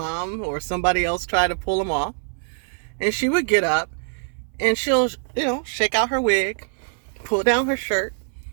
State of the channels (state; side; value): silent; left; 63 dB below the other